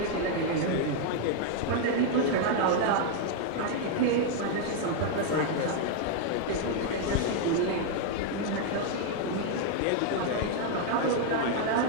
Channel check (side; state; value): both; different; correlation 0.00